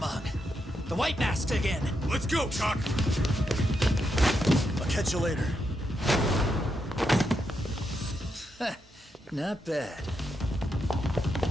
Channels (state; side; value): normal; both; correlation 0.83